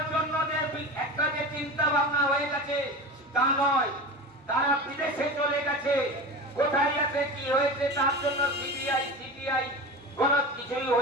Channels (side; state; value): both; normal; correlation 0.29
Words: জন্য যে একটা যে চিন্তা ভাবনা হয়ে গেছে তা নয়। তারা বিদেশে চলে গেছে, কোথায় আছে কি হয়েছে তার জন্য সিবিআই কোন কিছুই